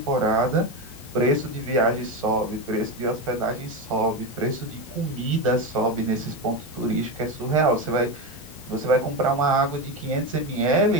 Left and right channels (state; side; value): normal; both; correlation 0.16